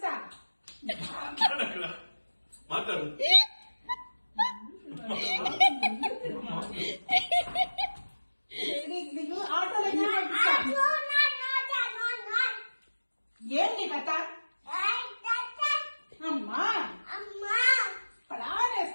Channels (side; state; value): both; inverted; correlation -1.00